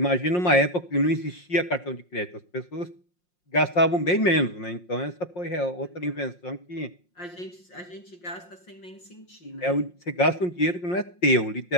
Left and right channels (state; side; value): late; right; 5.6 ms